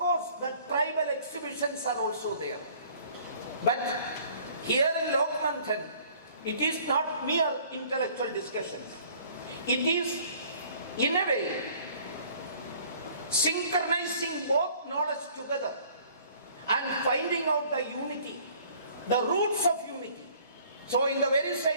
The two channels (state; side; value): inverted; both; correlation -0.55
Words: the tribal exhibitions are also there. But here in Lokmandhan, it is not mere intellectual discussions. It is, in a way, synchronizing both knowledge together and finding out the unity, the roots of unity. So in the very